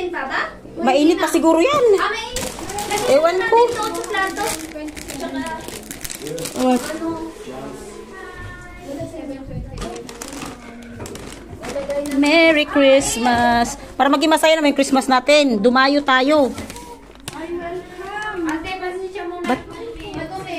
pa ba? Mainit pa siguro yan. Mainit. Ewan ko. Sa plato. What? Merry Christmas. Para maging masaya naman yung Christmas natin. Dumayo tayo. Ate, pasensya muna. Madumi,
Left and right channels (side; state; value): both; identical; correlation 1.00